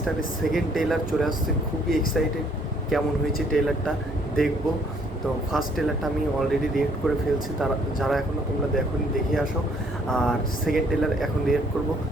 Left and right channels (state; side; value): normal; both; correlation 0.64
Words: সেকেন্ড ট্রেলার চলে আসছে, খুবই এক্সাইটেড। কেমন হয়েছে ট্রেলারটা দেখবো। তো ফার্স্ট ট্রেলারটা আমি অলরেডি রিয়েক্ট করে ফেলছি, তারা যারা এখনও তোমরা দেখোনি দেখে আসো। আর সেকেন্ড ট্রেলার এখন রিয়েক্ট করবো।